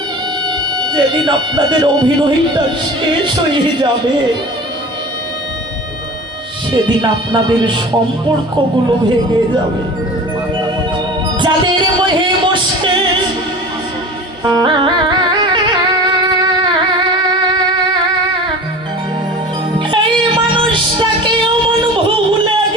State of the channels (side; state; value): both; normal; correlation 0.37